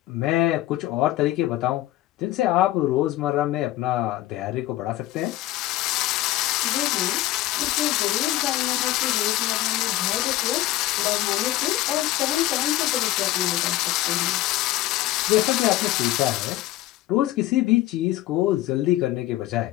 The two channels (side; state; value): right; quieter; 15.7 dB